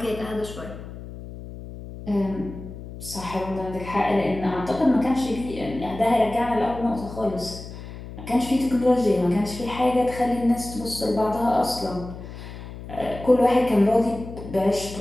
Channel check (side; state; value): left; noise; hum, 12 dB below the sound